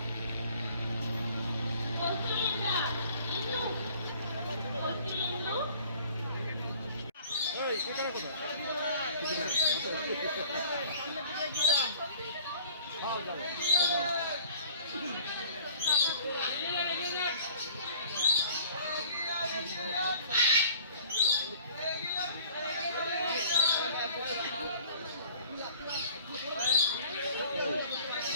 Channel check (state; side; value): inverted; both; correlation -0.51